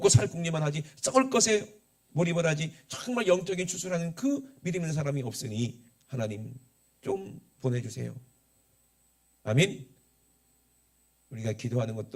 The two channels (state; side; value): identical; both; correlation 1.00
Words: 살 궁리만 하지, 썩을 것에 몰입을 하지, 정말 영적인 추수라는 그 믿음 있는 사람이 없으니 하나님 좀 보내주세요. 아멘. 우리가 기도하는